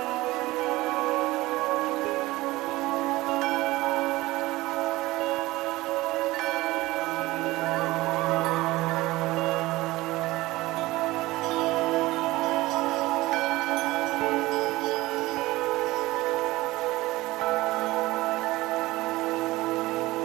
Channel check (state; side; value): quieter; left; 19.2 dB